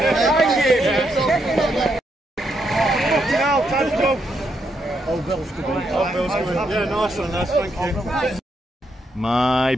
nice one, thank you. My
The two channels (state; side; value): normal; both; correlation 0.79